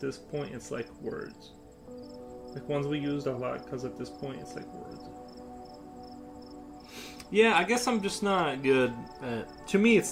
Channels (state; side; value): identical; both; correlation 1.00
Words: point it's like words. Like ones we used a lot because at this point it's like words. Yeah, I guess I'm just not good at... To me,